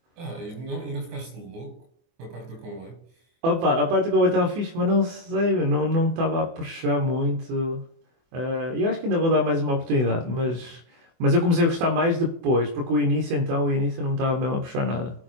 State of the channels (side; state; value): left; late; 24 ms